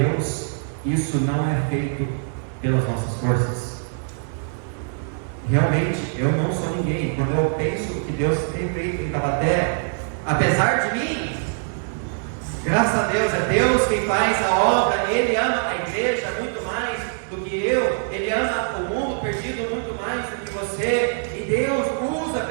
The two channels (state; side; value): silent; left; digital silence